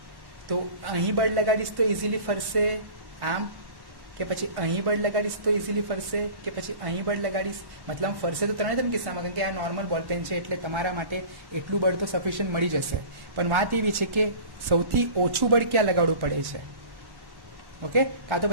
તો અહીં બળ લગાડીશ તો ઇઝીલી ફરશે આમ, કે પછી અહીં બળ લગાડીશ તો ઇઝીલી ફરશે, કે પછી અહીં બળ લગાડીશ. મતલબ ફરશે તો 3 કિસ્સામાં, કારણ કે આ નોર્મલ બોલપેન છે એટલે તમારા માટે એટલું બળ તો સફિશિયન્ટ મળી જશે. પણ વાત એવી છે કે સૌથી ઓછું બળ ક્યાં લગાડવું પડે છે. ઓકે, કાં તો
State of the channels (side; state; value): left; late; 1.1 ms